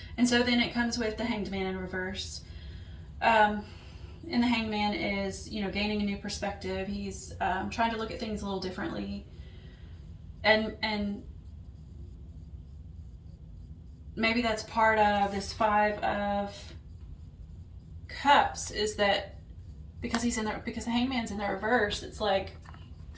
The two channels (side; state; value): both; identical; correlation 1.00